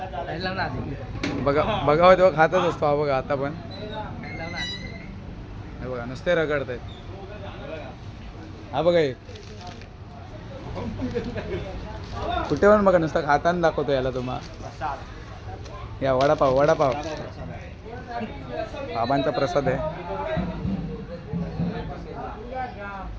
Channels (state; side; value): identical; both; correlation 1.00